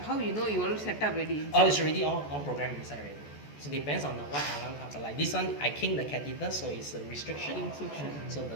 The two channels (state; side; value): late; right; 14 ms